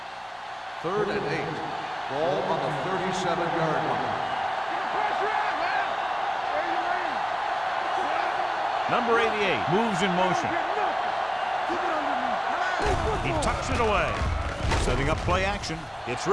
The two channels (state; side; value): identical; both; correlation 1.00